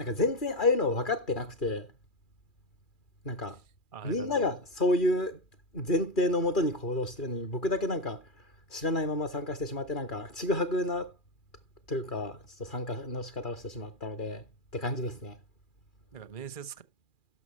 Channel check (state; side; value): late; right; 2.4 ms